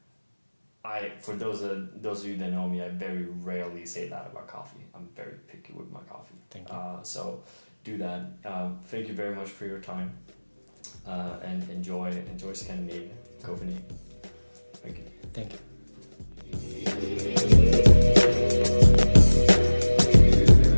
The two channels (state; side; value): inverted; both; correlation -1.00